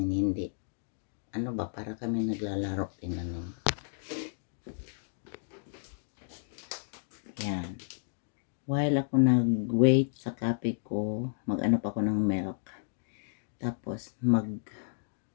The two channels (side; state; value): right; silent; digital silence